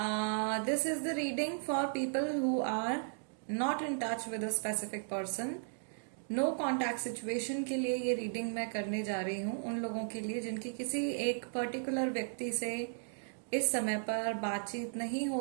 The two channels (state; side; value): silent; left; digital silence